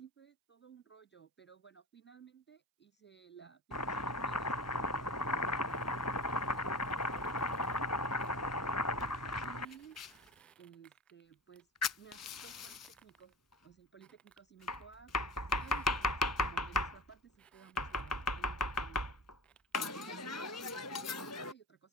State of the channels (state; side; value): normal; both; correlation 0.34